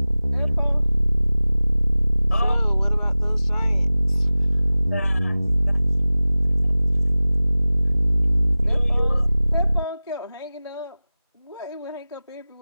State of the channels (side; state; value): both; inverted; correlation -0.97